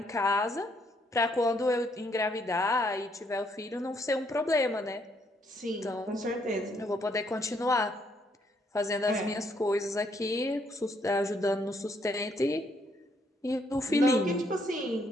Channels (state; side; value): normal; both; correlation 0.71